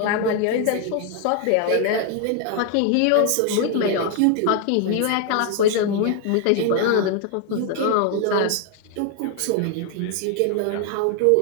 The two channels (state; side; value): different; both; correlation 0.00